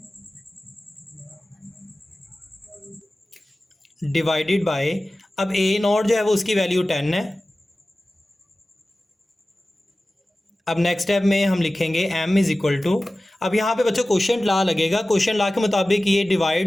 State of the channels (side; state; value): both; normal; correlation 0.96